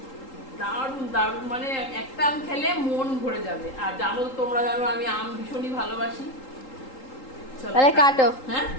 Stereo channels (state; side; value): late; right; 3.8 ms